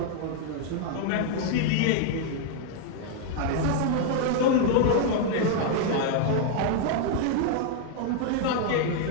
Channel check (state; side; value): different; both; correlation 0.00